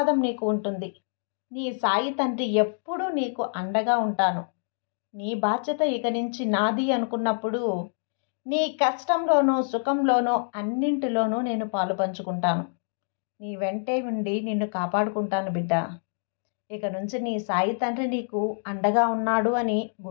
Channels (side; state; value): right; silent; digital silence